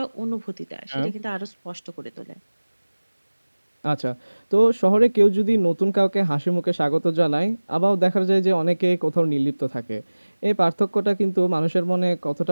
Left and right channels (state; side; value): inverted; both; correlation -1.00